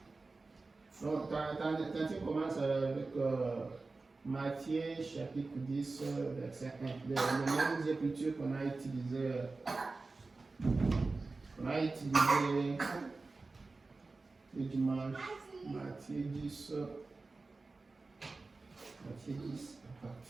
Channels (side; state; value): left; quieter; 3.7 dB